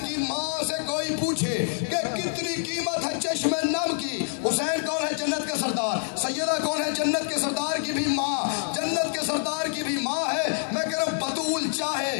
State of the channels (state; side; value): silent; right; digital silence